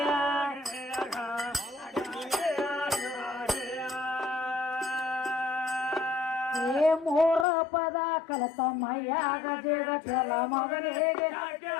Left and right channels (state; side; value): drops out; right; at 7.5 s